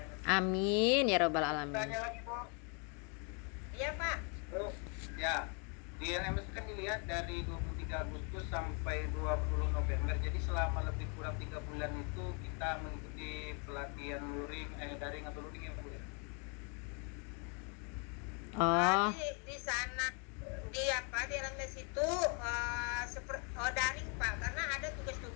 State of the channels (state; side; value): quieter; right; 36.8 dB